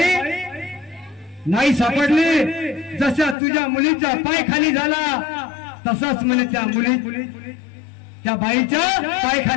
नाही सापडली जसा तुझ्या मुलीचा पाय खाली झाला तसाच म्हणे त्या मुली त्या बाईच्या पाय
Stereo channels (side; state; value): right; drops out; at 3.4 s